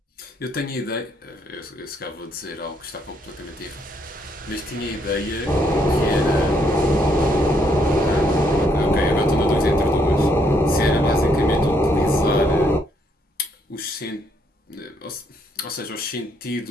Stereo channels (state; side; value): normal; both; correlation 0.72